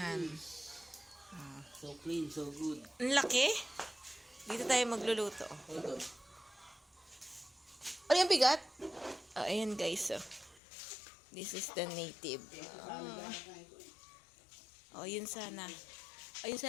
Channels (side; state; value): right; drops out; at 10.6 s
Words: So clean, so good. Ang laki. Dito tayo magluluto. Ito. Ano yung bigat? Oh, ayan, guys. Oh. This is the native. Oh, yun sana. Ayun